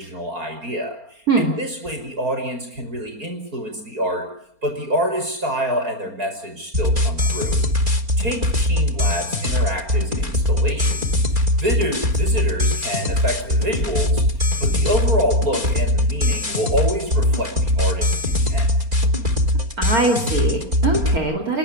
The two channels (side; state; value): left; late; 4.3 ms